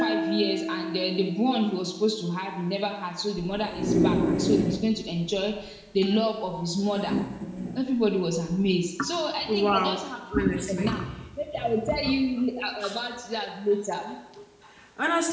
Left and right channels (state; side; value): identical; both; correlation 1.00